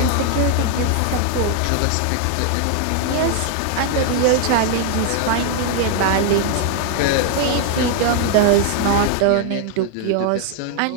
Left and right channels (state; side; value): different; both; correlation 0.00